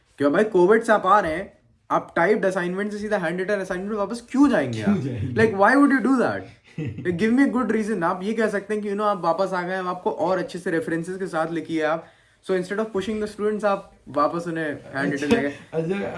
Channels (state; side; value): identical; both; correlation 1.00